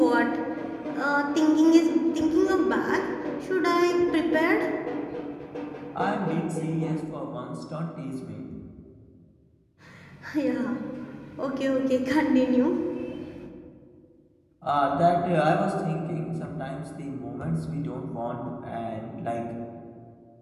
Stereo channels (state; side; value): identical; both; correlation 1.00